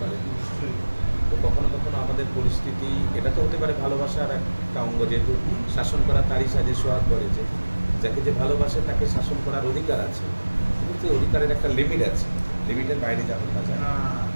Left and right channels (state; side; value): inverted; both; correlation -1.00